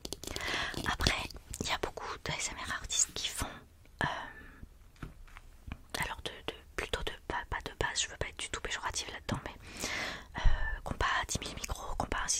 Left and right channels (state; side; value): identical; both; correlation 1.00